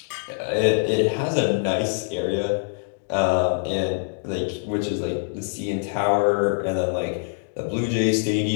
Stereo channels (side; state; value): right; silent; digital silence